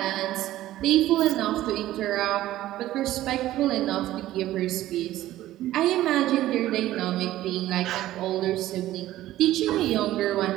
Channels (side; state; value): left; quieter; 14.6 dB